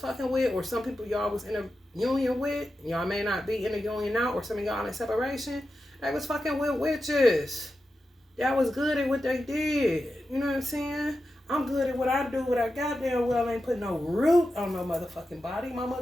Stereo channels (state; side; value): normal; both; correlation 0.90